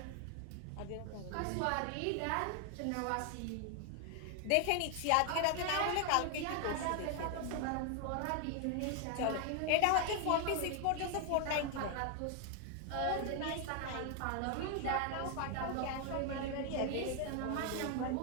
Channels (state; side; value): different; both; correlation 0.00